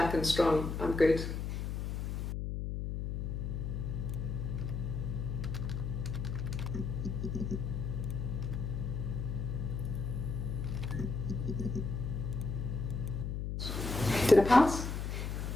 and strong, I'm good. Did I pass?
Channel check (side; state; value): left; noise; hum, 3 dB below the sound